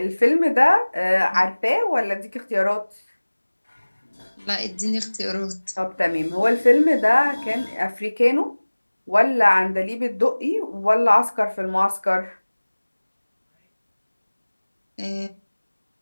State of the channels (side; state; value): both; inverted; correlation -1.00